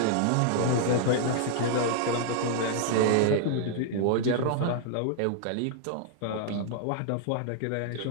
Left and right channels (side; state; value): both; different; correlation -0.01